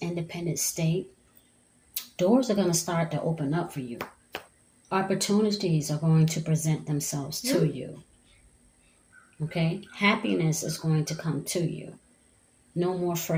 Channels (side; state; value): both; identical; correlation 1.00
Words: independent state, doors are going to start to open up for you. Opportunities are going to present themselves to you. Okay? Happiness is going to come to you. No more